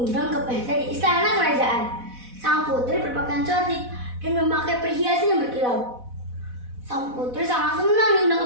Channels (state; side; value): late; left; 4.1 ms